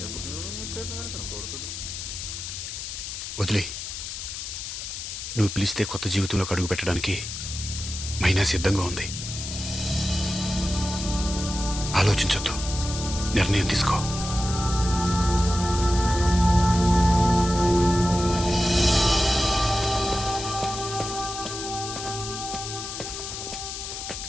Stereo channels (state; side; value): noise; left; hiss, 7 dB below the sound